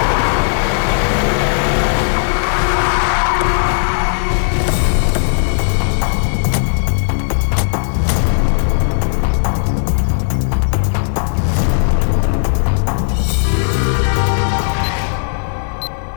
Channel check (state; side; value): silent; right; digital silence